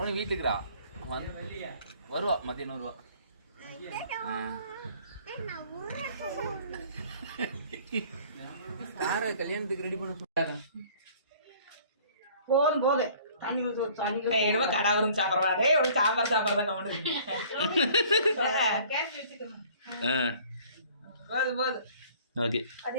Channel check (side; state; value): both; inverted; correlation -0.53